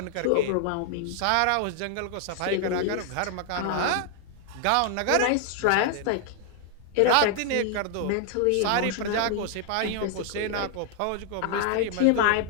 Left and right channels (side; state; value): both; different; correlation 0.00